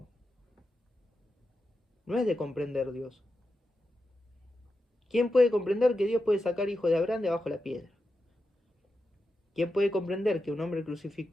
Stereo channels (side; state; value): both; normal; correlation 0.89